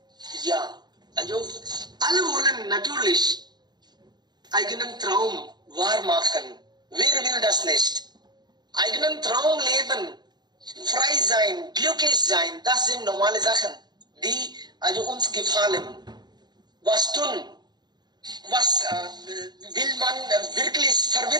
Ja, also alle wollen natürlich eigenen Traum wahr machen. Wer will das nicht? Eigenen Traum leben, frei sein, glücklich sein, das sind normale Sachen, die also uns gefallen. Was tun? Was will man wirklich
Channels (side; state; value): left; late; 0.20 ms